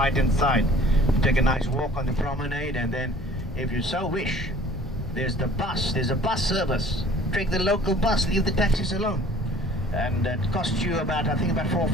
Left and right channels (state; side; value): normal; both; correlation 0.50